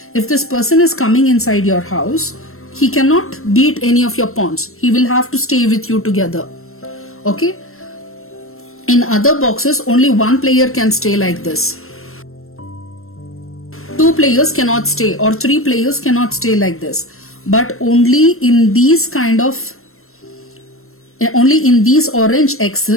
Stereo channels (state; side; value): late; right; 0.62 ms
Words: if this person is coming inside your house, he cannot beat any of your pawns. He will have to stay with you together. Okay, in other boxes only one player can stay like this. 2 players cannot stay, or 3 players cannot stay like this. But only in these orange